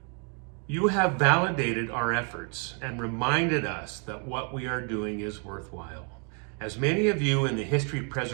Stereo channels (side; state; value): left; quieter; 39.1 dB